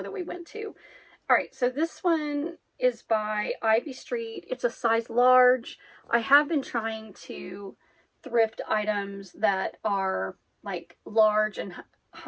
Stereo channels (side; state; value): both; identical; correlation 1.00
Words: that we went to. All right, so this one is by Ivy Street. It's a size large. I have been trying to thrift items that are like large and